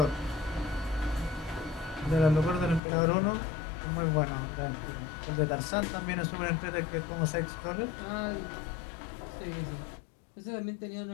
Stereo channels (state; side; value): drops out; right; at 2.8 s